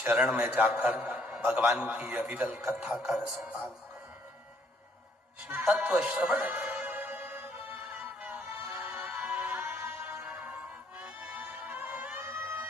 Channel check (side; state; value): both; normal; correlation 0.66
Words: में जाकर भगवान की अविरल कथा का रसपान करो। शिव तत्व श्रवण,